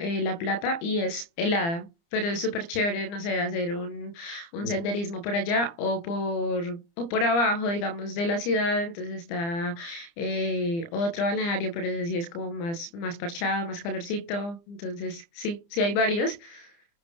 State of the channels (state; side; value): late; right; 30 ms